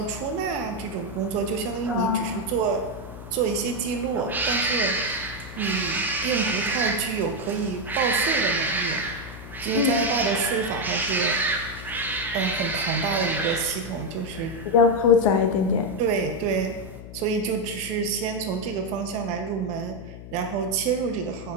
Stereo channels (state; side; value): noise; left; hum, 13 dB below the sound